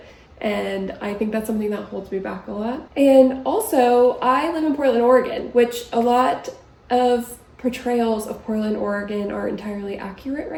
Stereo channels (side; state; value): both; identical; correlation 1.00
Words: And I think that's something that holds me back a lot. And also, I live in Portland, Oregon, which a lot of portrayals of Portland, Oregon are entirely accurate